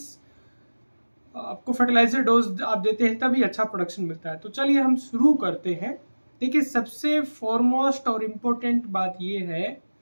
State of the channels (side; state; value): both; inverted; correlation -1.00